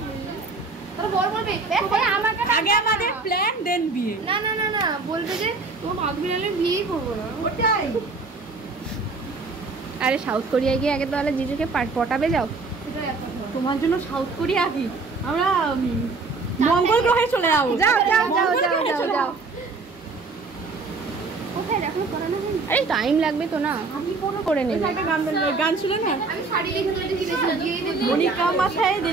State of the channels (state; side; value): quieter; left; 4.0 dB